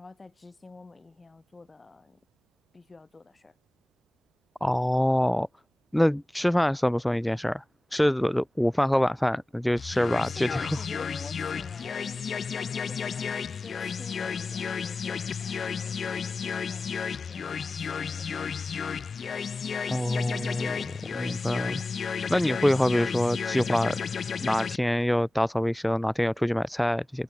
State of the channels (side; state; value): both; normal; correlation 0.97